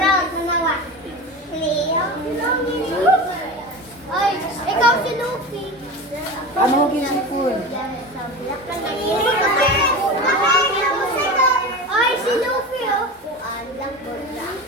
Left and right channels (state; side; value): normal; both; correlation 0.28